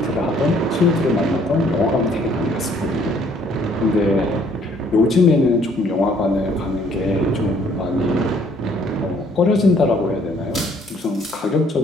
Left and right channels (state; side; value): normal; both; correlation 0.62